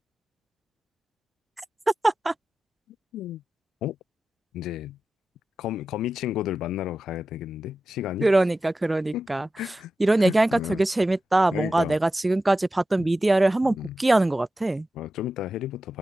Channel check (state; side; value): normal; both; correlation 0.92